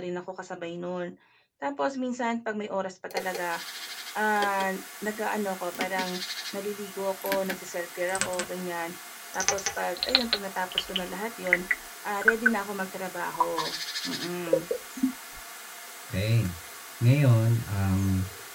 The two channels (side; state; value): both; identical; correlation 1.00